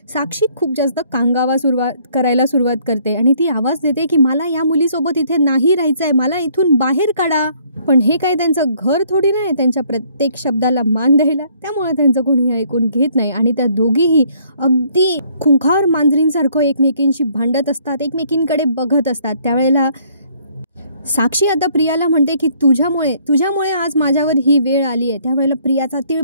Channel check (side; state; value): both; inverted; correlation -0.64